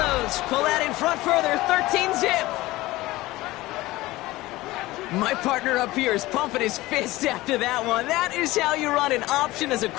pull out in front further, 13-zip. My partner up here is pumping his fist after that one. That is how you run an option as a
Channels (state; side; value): quieter; right; 18.7 dB